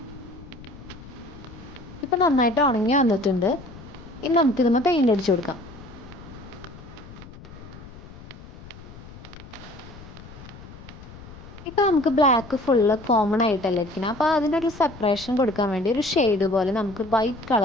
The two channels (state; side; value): noise; left; rumble, 17 dB below the sound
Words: ഇപ്പം നന്നായിട്ട് ഉണങ്ങി വന്നിട്ടുണ്ട്. ഇനി നമുക്കിതൊന്ന് പെയിൻ്റ് അടിച്ചു കൊടുക്കാം. ഇപ്പോൾ നമുക്ക് ബ്ലാക്ക് ഫുള്ള് കോമൺ ആയിട്ടല്ലേ ഇരിക്കുന്നത്. അപ്പോൾ അതിനൊരു സെപ്പറേഷൻ കൊടുക്കാൻ വേണ്ടി ഒരു ഷെയ്ഡ് പോലെ നമുക്ക് വൈറ്റ്